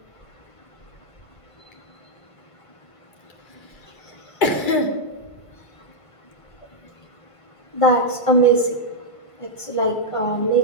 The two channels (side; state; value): right; late; 2.3 ms